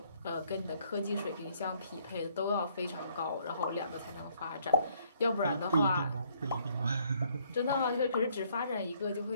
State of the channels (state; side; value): inverted; both; correlation -0.65